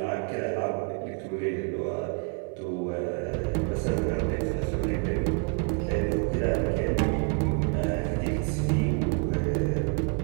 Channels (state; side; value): quieter; left; 36.0 dB